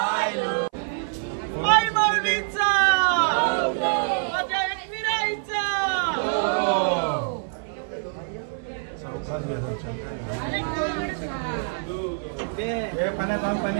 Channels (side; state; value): left; silent; 56 dB below the other